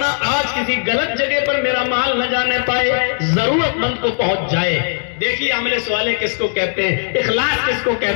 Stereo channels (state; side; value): silent; right; 66 dB below the other